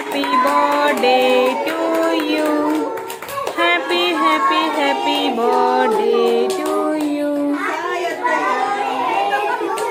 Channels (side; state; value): both; identical; correlation 1.00